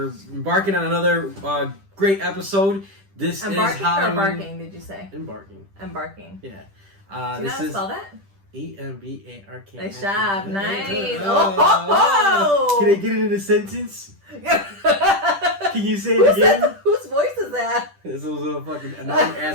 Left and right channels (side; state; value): left; late; 10 ms